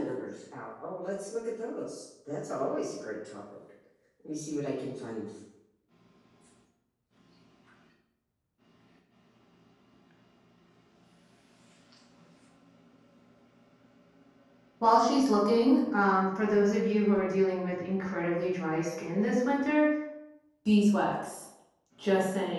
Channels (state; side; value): identical; both; correlation 1.00